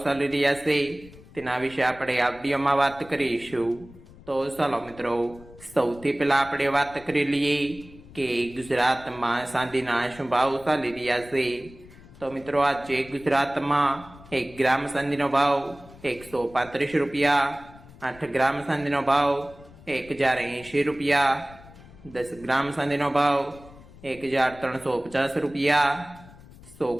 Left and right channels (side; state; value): left; noise; rumble, 21 dB below the sound